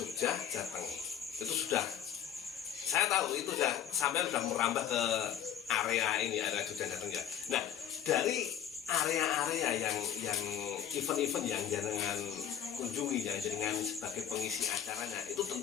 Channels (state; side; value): quieter; right; 9.7 dB